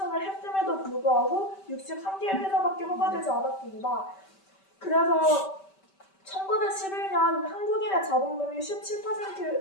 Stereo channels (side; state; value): right; late; 5.2 ms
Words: 했음에도 불구하고 63개의 회사밖에 허가되지 않았습니다. 그래서 1911년 한국인의 자본금이